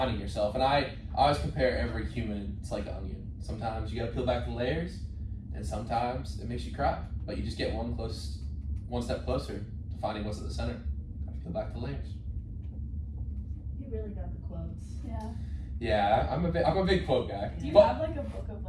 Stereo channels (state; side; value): identical; both; correlation 1.00